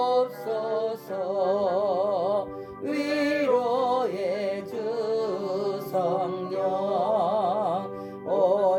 위로의 주 성령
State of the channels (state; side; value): identical; both; correlation 1.00